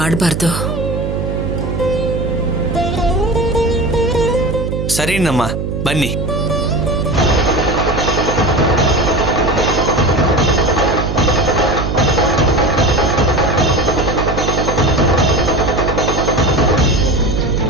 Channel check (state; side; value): noise; right; hum, 3 dB below the sound